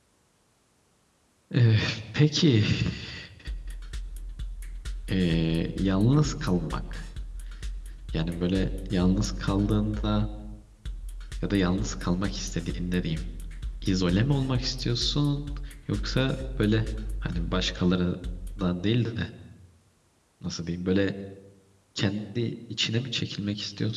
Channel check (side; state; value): both; identical; correlation 1.00